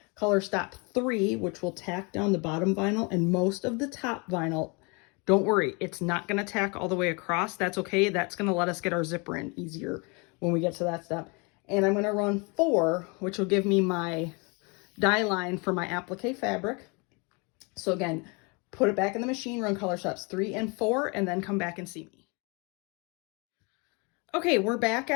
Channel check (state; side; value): quieter; right; 30.5 dB